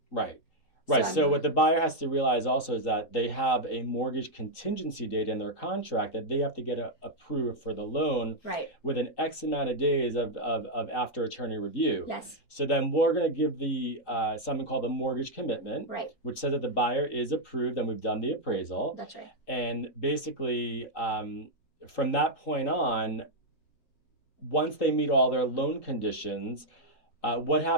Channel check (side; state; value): right; late; 3.8 ms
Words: Right. Right. So what the buyer has to realize also is that they have a mortgage contingency date in their contract that they have to get approved for the loan within X amount of days of after attorney review. Yes. So then we're going to give the something called the mortgage commitment, which says that the buyer is approved and we've done the appraisal. That's right. And basically, from that point on, once they meet all their loan conditions, what